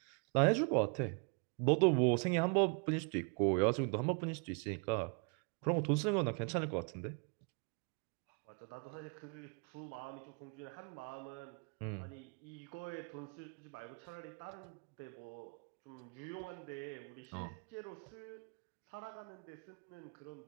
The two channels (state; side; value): quieter; left; 38.0 dB